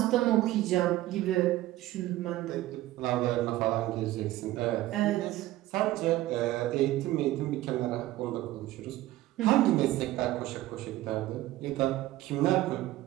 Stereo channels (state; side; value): quieter; left; 16.0 dB